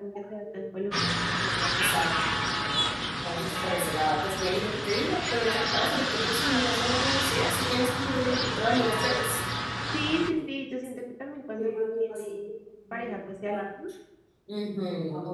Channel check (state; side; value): identical; both; correlation 1.00